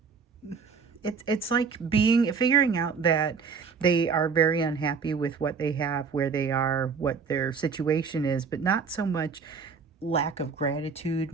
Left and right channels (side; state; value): left; quieter; 5.5 dB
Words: it's like figuring out that they are very unhappy with what they have, where they are, what their situation is, but not so much lack of gratitude,